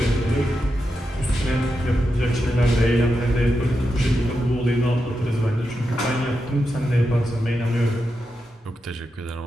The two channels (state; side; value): normal; both; correlation 0.88